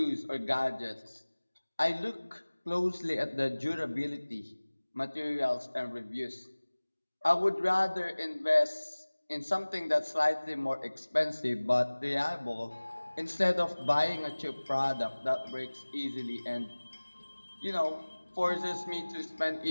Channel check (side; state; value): both; inverted; correlation -1.00